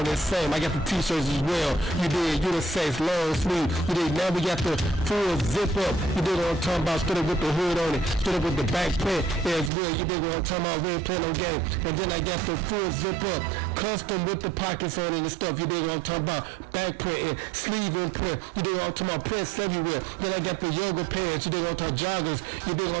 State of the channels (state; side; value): drops out; left; at 9.7 s